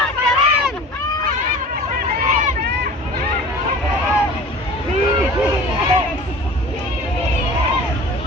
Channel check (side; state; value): both; normal; correlation 0.41